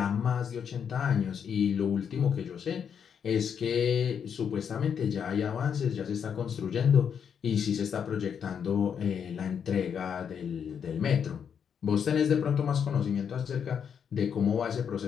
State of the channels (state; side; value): quieter; right; 7.5 dB